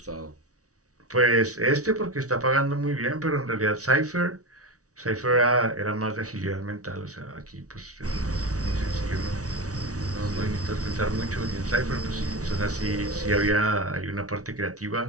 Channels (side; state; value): left; late; 0.66 ms